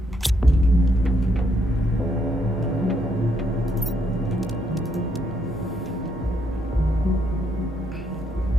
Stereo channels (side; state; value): both; normal; correlation 0.75